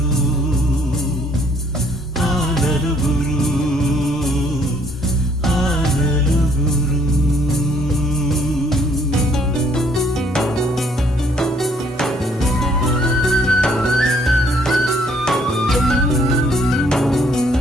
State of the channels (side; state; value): both; normal; correlation 0.64